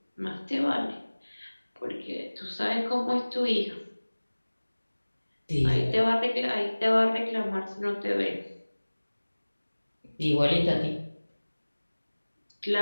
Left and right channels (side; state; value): both; inverted; correlation -1.00